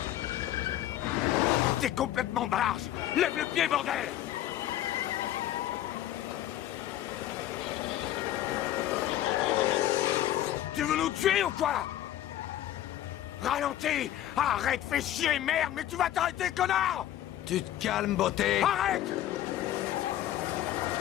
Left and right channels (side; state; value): right; quieter; 12.8 dB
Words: T'es complètement barge! Lève le pied, bordel! Tu veux nous tuer ou quoi? Ralentis! Arrête, fais chier, merde, mais tu vas t'arrêter, connard! Tu te calmes, beauté. Arrête!